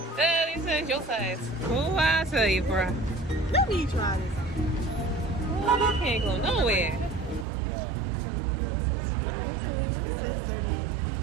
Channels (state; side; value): drops out; left; at 7.5 s